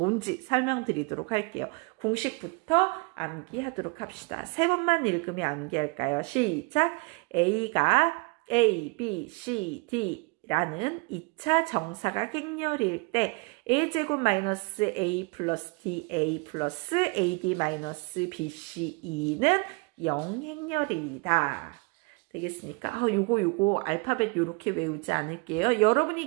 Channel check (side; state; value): left; quieter; 30.4 dB